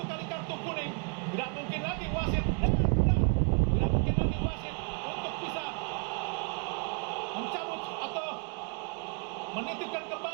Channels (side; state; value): left; quieter; 38.3 dB